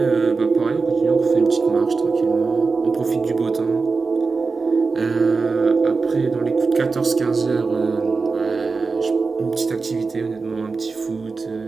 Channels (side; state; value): left; quieter; 4.4 dB